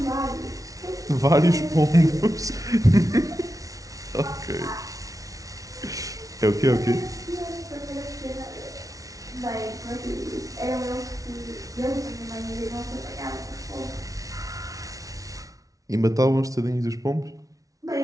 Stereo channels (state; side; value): late; left; 0.17 ms